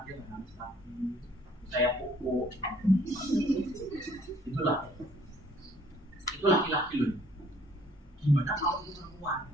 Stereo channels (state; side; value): normal; both; correlation 0.60